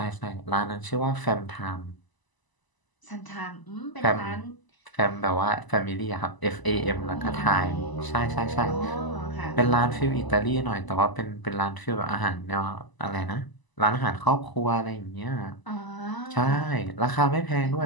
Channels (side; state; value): right; late; 1.0 ms